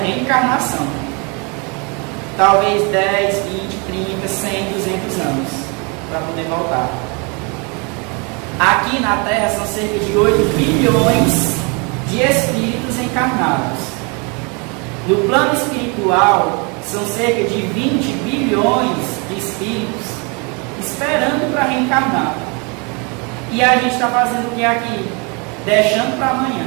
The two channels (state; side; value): quieter; left; 32.2 dB